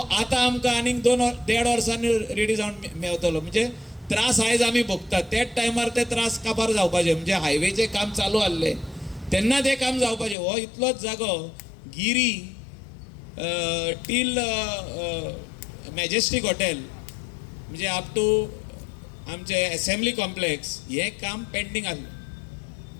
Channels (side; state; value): right; drops out; at 10.4 s